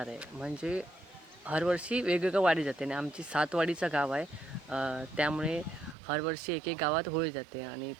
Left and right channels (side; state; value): left; drops out; at 6.0 s